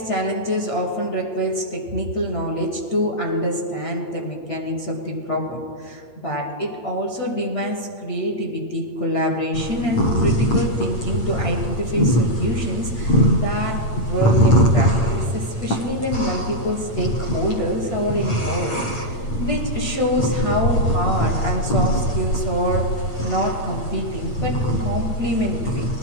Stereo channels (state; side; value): late; right; 8.6 ms